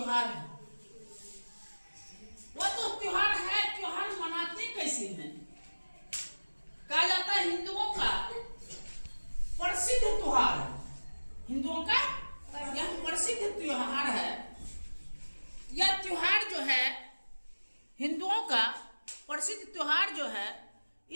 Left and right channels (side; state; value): both; inverted; correlation -1.00